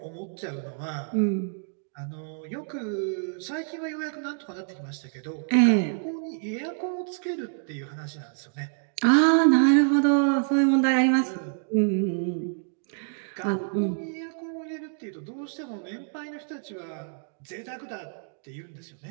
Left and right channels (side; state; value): left; silent; digital silence